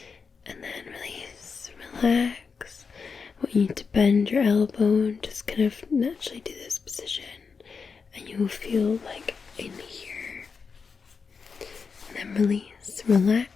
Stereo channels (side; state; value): right; quieter; 5.4 dB